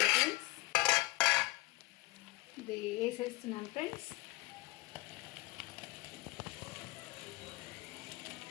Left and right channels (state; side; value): quieter; right; 20.5 dB